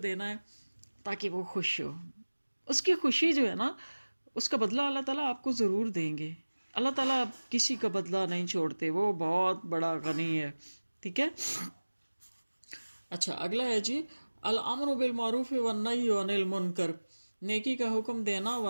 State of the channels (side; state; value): both; inverted; correlation -1.00